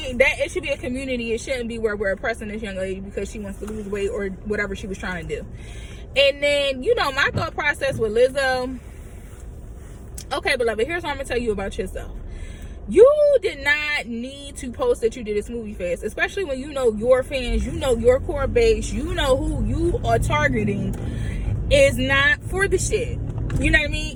That it should be a community. It shouldn't be where we're oppressing this young lady because she wants to lose weight or whatever she was trying to do. And then, my thought process with Lizzo. Okay, beloved, here's what I'm gonna tell you about yourself. You did not need to post that you did a smoothie fast, especially when your fans, your core base, who you are targeting is not for the shit. You know what I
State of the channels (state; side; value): identical; both; correlation 1.00